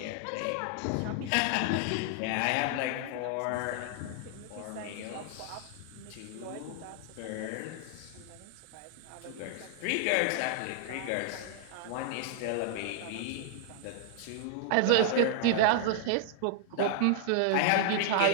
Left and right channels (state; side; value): different; both; correlation -0.01